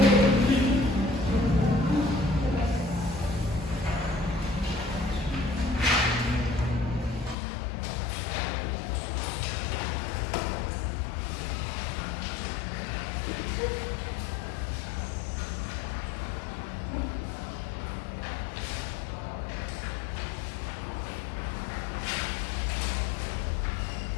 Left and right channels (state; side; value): drops out; right; at 7.4 s